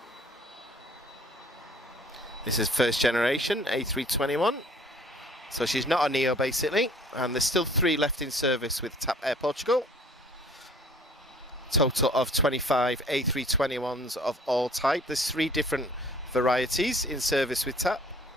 This is first generation A321. So she's not a Neo basically, and there's still 3 left in service with TAP Air Portugal. Total of 25 A321s of all type. There's 3 different varieties in service with TAP.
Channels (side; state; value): both; normal; correlation 0.54